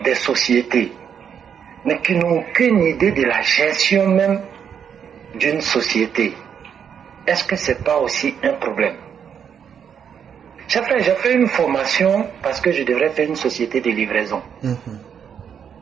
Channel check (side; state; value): left; quieter; 7.8 dB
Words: sociétés, mais qui n'ont aucune idée de la gestion même d'une société, est-ce que ce n'est pas aussi un problème? J'ai fait une formation parce que je devrais faire une société de livraison.